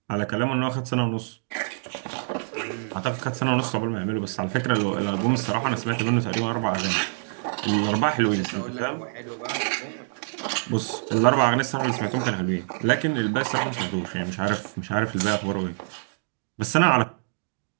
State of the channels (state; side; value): silent; left; digital silence